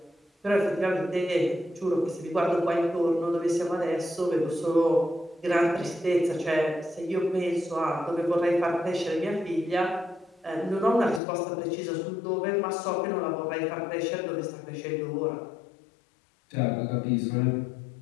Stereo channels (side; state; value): right; drops out; at 11.2 s